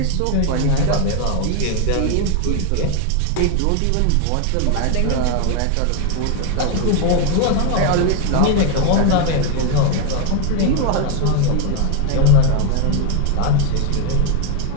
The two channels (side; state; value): both; different; correlation 0.01